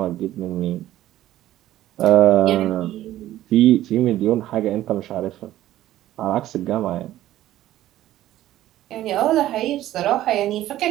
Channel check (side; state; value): left; quieter; 13.9 dB